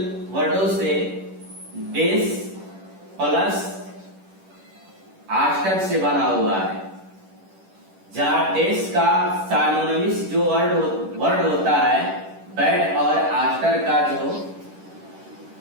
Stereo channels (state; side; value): late; left; 10 ms